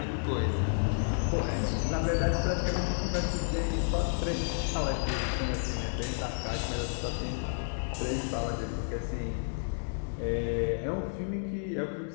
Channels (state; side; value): silent; right; digital silence